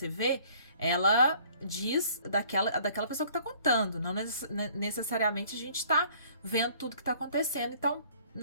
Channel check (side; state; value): both; inverted; correlation -0.56